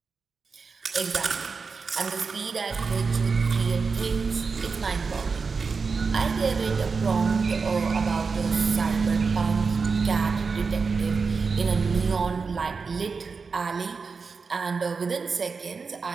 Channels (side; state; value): left; quieter; 4.9 dB